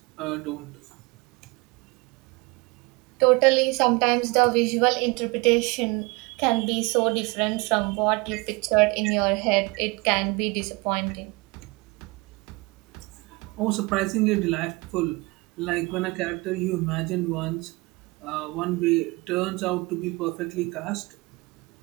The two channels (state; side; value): quieter; left; 25.7 dB